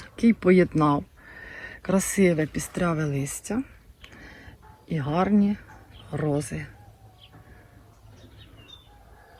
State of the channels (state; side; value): identical; both; correlation 1.00